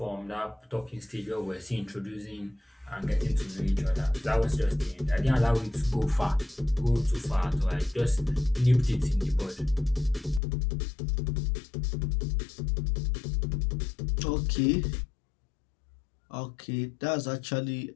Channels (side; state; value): right; drops out; at 10.4 s